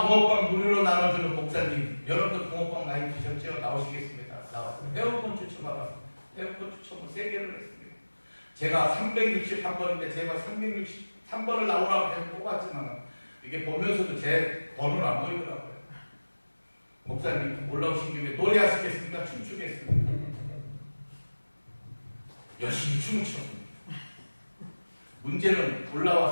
붕어빵 무료로 나눠주는 목사님, 여러분들 붕어빵 많이 드셨죠? 나오시겠습니다. 나왔습니다. 회원권 추첨하라. 회원권 추첨을 3개를 했습니다. 제가 363번인데 제가 363번을 나오라고 해서 뽑았지만 이게 보면서도 제 번호는 안 보이더라고요. 목사님 올라오신 김에 노래하시겠습니까? 춤추겠습니다. 열심히 춤을 췄습니다. 문제는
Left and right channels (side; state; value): both; inverted; correlation -1.00